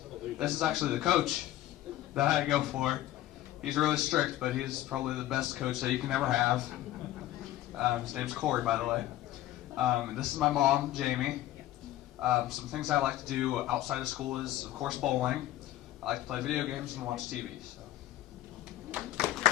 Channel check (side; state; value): right; quieter; 14.4 dB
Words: This is actually the coach that I go for. He's really strict, but he's probably the best coach that you can ever have. His name's Corey, by the way. And this is my mom, Jamie. Some things I like to do outside of school is, of course, bowling. I like to play video games and watch TV.